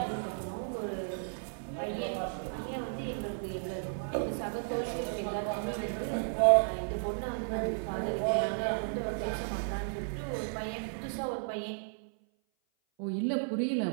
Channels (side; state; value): left; silent; 55 dB below the other